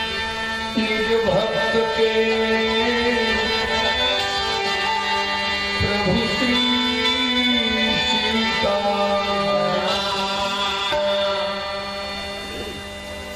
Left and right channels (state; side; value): identical; both; correlation 1.00